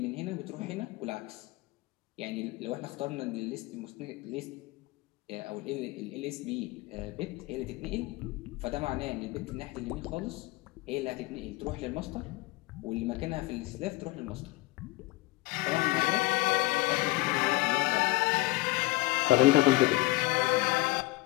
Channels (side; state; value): right; quieter; 21.0 dB